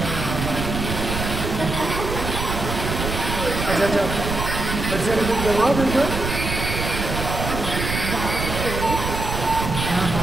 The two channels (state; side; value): noise; right; rumble, 4 dB below the sound